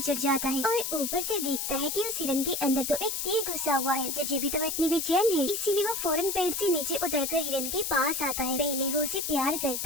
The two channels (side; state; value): left; noise; hiss, 2 dB below the sound